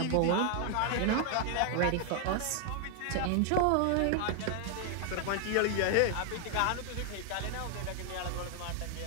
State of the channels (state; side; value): different; both; correlation 0.00